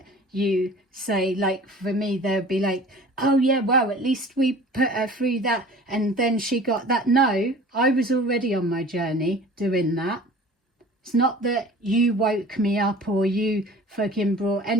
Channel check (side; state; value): both; normal; correlation 0.44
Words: you say, like for me, they'll be like, oh yeah, well, at least we put her through that and then she got that. No, I was already on my journey doing that. It's not that you woke me up or you fucking brought